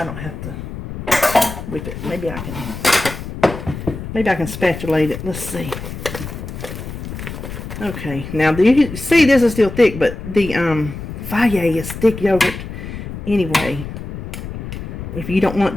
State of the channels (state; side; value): noise; left; rumble, 9 dB below the sound